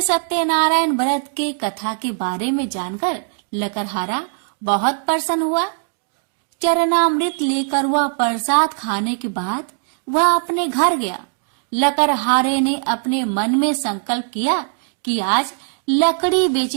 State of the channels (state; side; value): silent; left; digital silence